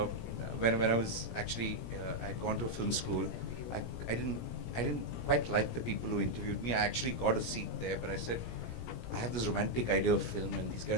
when I was actually, I'd gone to a film school, I didn't quite like the people who interviewed me. I actually got a seat there, but I said, I have this romantic idea of film, and these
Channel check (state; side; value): late; right; 17 ms